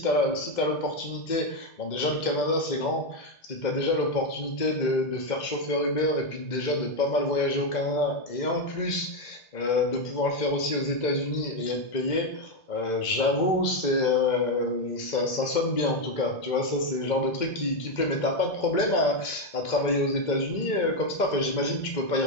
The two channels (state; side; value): late; right; 2.0 ms